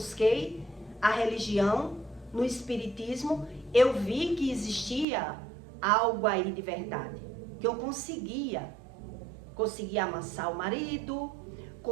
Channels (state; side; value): drops out; left; at 5.1 s